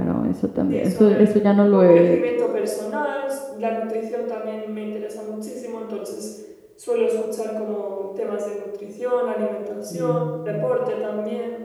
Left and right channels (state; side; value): identical; both; correlation 1.00